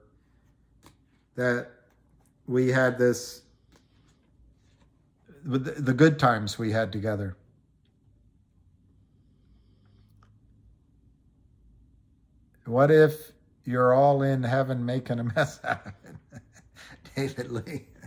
that we had this, the good times we had together. What if you're all in heaven making a mess out of it? David Lee.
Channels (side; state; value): both; identical; correlation 1.00